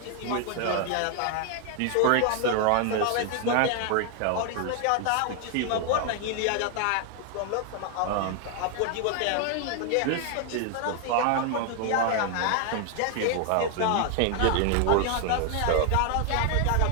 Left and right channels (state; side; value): different; both; correlation 0.00